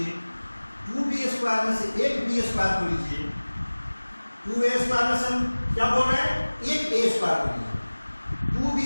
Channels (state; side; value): inverted; both; correlation -1.00